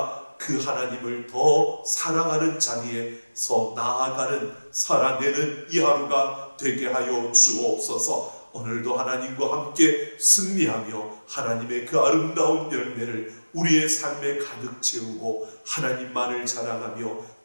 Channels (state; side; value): inverted; both; correlation -1.00